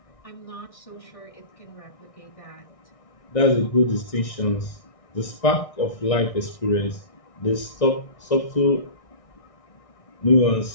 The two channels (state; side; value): late; right; 1.6 ms